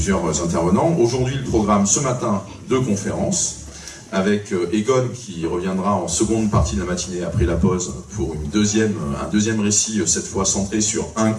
intervenants. Aujourd'hui, le programme ce matin de conférences avec Egon qui reviendra en seconde partie de la matinée après la pause pour un deuxième récit, cette fois centré sur un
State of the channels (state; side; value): identical; both; correlation 1.00